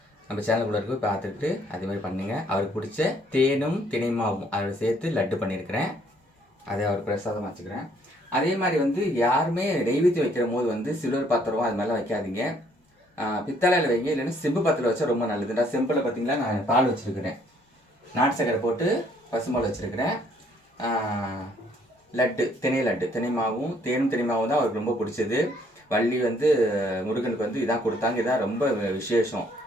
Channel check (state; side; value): normal; both; correlation 0.65